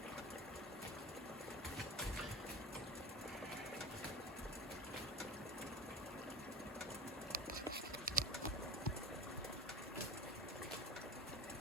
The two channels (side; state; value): both; normal; correlation 0.33